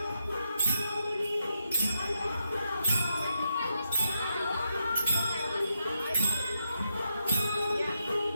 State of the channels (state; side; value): inverted; both; correlation -0.83